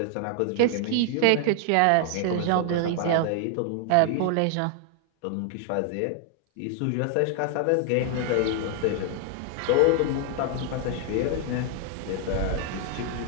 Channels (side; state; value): both; different; correlation 0.00